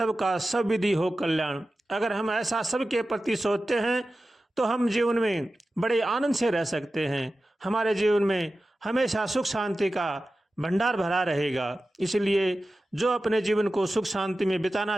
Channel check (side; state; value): both; normal; correlation 0.94